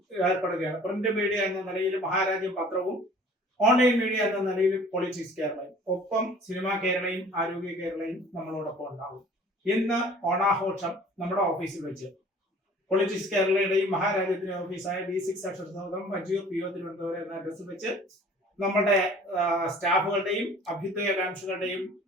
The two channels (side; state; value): both; normal; correlation 0.49